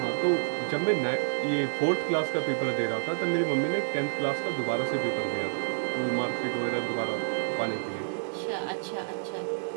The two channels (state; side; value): silent; left; digital silence